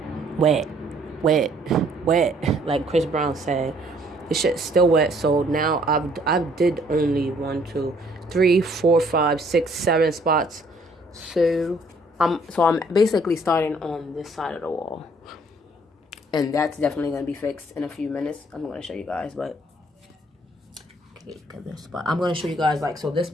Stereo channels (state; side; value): normal; both; correlation 0.62